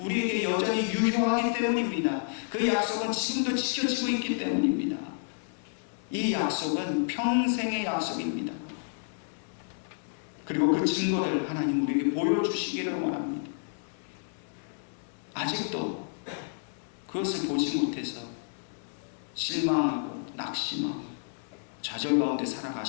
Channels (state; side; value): silent; right; 58 dB below the other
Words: 여전히 유효하기 때문입니다. 그 약속은 지금도 지켜지고 있기 때문입니다. 이 약속은 평생의 약속입니다. 그리고 그 증거를 하나님 우리에게 보여주시기를 원합니다. 아직도 그것을 보지 못해서 실망하고 낙심하고 좌절 가운데